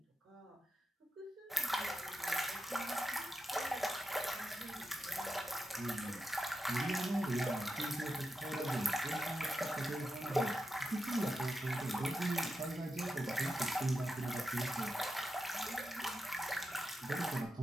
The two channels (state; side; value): normal; both; correlation 0.88